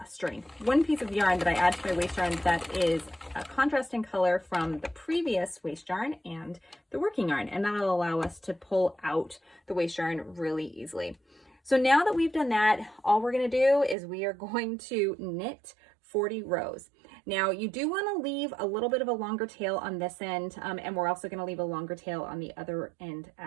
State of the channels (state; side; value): drops out; left; at 14.0 s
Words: one piece of yarn that I add to my waste yarn that is a contrasting color from the previous waste yarn and the working yarn, and that'll allow us to pull out the waste yarn really easily. So now that we've done that, all we're going to do is we are going to knit 40 rows. Now you do want to leave a little bit of a longer tail on this end, and we're also going to leave a longer tail on the other end